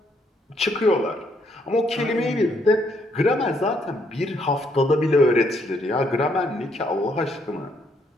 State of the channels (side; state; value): both; normal; correlation 0.71